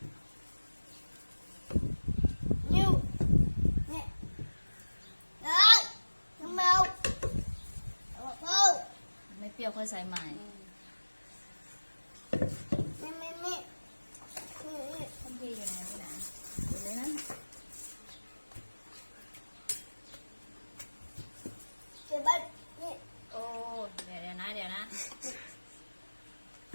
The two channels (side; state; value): both; inverted; correlation -1.00